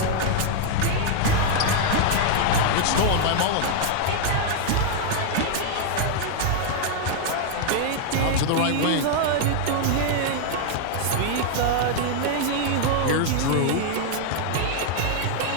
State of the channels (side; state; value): both; different; correlation 0.00